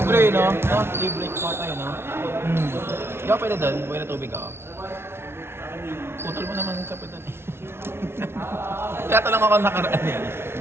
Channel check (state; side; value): late; left; 0.12 ms